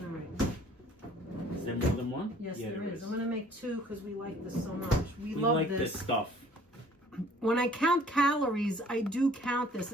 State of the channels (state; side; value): normal; both; correlation 0.55